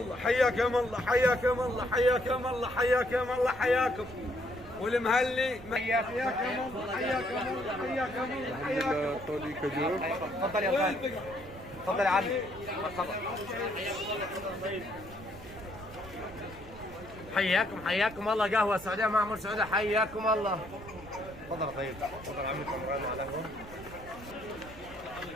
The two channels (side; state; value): right; noise; rumble, 17 dB below the sound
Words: حياكم الله حياكم الله حياكم الله حياكم الله حياكم. والمهلي حياكم الله حياكم الله حياكم الله حياكم. सऊदी खजूर تفضل يا خالد، تفضل يا عمي، مرحبا. حياكم الله، قهوه سعوديه معمر سعوديه، حياكم الله. تفضل يا طيب، تفضل عمي كمران على القهوه.